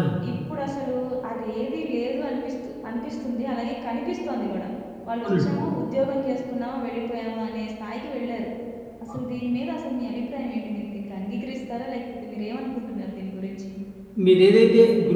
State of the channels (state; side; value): identical; both; correlation 1.00